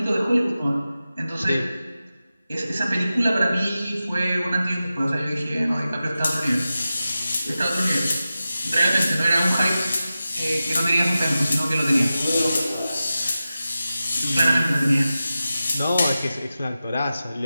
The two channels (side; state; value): both; inverted; correlation -0.93